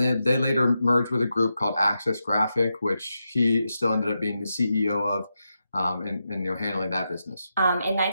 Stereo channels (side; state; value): both; inverted; correlation -0.87